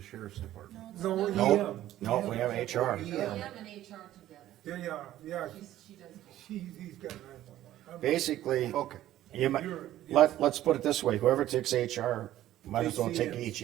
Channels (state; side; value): quieter; left; 13.5 dB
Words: department. no, No, EM. no, we have HR. EM and HR together. Yeah, She does both. he's got 911. Basically, Okay. you might, You're- let's put it this way, whoever takes HR, might as well Takes take